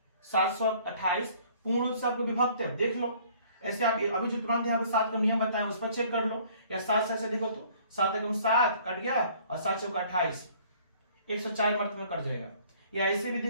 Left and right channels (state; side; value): inverted; both; correlation -0.56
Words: 728 पूर्ण रूप से आपको विभक्त है, देख लो। ऐसे आप अभी जो तुरंत यहाँ पे 7 का नियम बताया उस पर चेक कर लो, या 7 से ऐसे देखो तो 7 एकम 7 कट गया और 7 चौका 28, 104 मर्त में कट जाएगा। या ऐसे भी